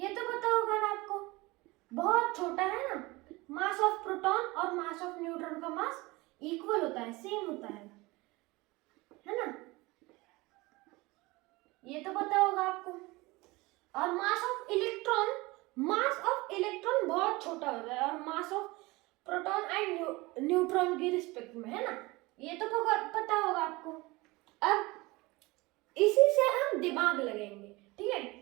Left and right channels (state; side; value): quieter; left; 22.4 dB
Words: तो पता होगा ना आपको, बहुत छोटा है ना। मास ऑफ प्रोटॉन और मास ऑफ न्यूट्रॉन का मास इक्वल होता है, सेम होता है ना, ये तो पता होगा आपको। और मास ऑफ इलेक्ट्रॉन बहुत छोटा होता है और mass of proton and neutron के रिस्पेक्ट में, है ना, ये तो पता होगा आपको। अब इसी से हम दिमाग लगाएंगे, ठीक है।